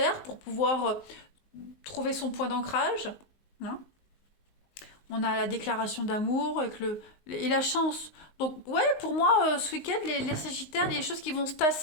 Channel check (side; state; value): right; late; 19 ms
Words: pour pouvoir trouver son point d'ancrage. Hein. On a la déclaration d'amour et la chance. Donc, ouais, pour moi, ce week-end, les Sagittaires, il y a des choses qui vont se